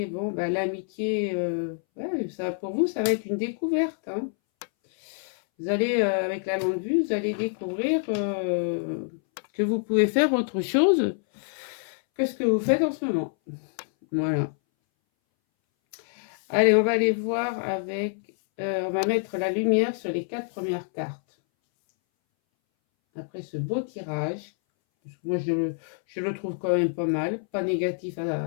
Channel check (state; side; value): silent; right; 60 dB below the other